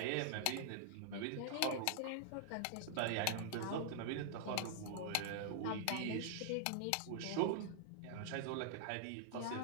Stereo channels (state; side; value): different; both; correlation -0.01